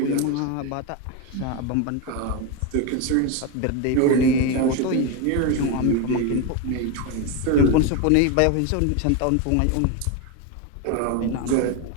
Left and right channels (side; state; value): both; different; correlation 0.02